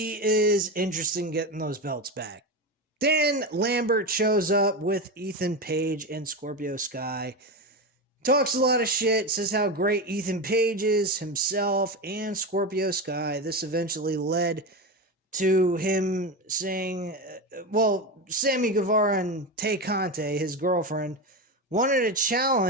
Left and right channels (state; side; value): normal; both; correlation 0.18